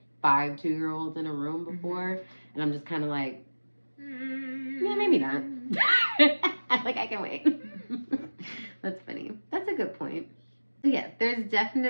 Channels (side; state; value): both; inverted; correlation -1.00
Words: 5 2-year-olds in a room before, and I'm just kind of like, yeah, maybe not. Like I can wait. That's funny. That's a good point. Yeah, there's